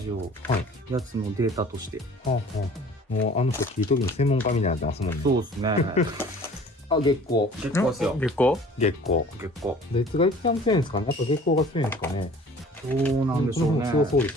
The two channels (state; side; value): normal; both; correlation 0.49